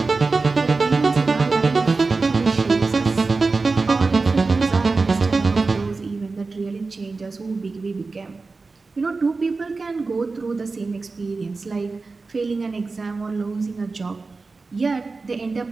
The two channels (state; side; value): quieter; left; 4.0 dB